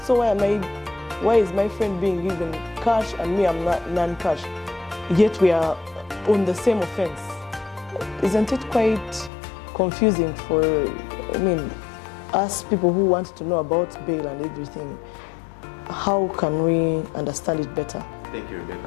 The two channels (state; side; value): drops out; right; at 9.3 s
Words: why is my friend being given cash and me I'm not non-cash? Yet we are on the same offense. Isn't it quite confusing for, I mean, us people who want to know about bail and everything? How can we understand it better? Thank you,